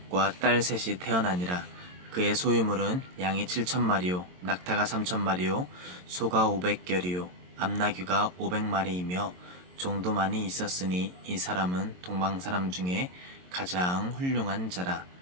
딸 3이 태어나니라. 그의 소유물은 양이 7,000마리요 낙타가 3,000마리요 소가 500결이요 암나귀가 500마리이며 종도 많이 있었으니 이 사람은 동방 사람 중에 가장 훌륭한 자라.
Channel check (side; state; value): left; late; 22 ms